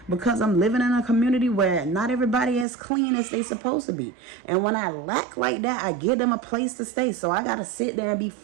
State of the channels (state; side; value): drops out; left; at 2.7 s